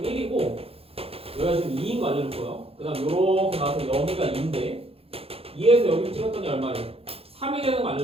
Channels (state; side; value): late; left; 0.28 ms